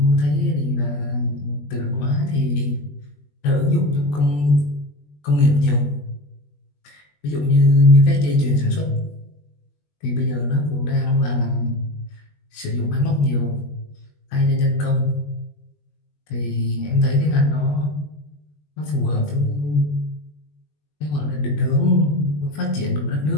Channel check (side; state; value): right; late; 20 ms